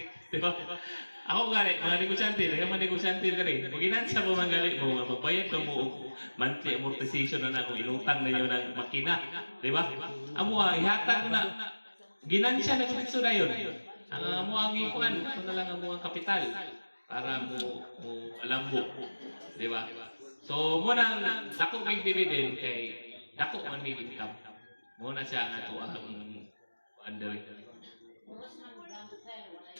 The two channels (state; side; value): inverted; both; correlation -1.00